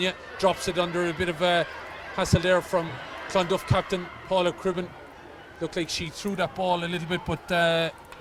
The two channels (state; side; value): identical; both; correlation 1.00